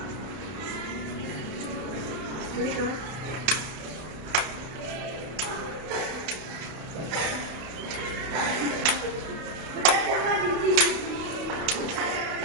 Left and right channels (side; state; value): left; late; 32 ms